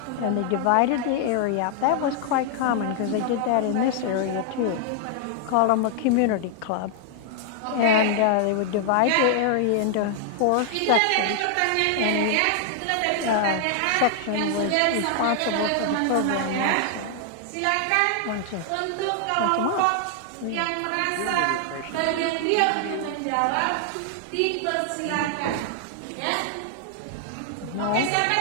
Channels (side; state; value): both; different; correlation 0.00